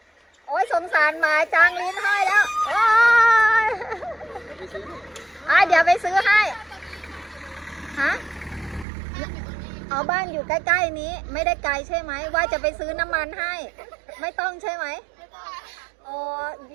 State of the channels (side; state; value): left; drops out; at 8.8 s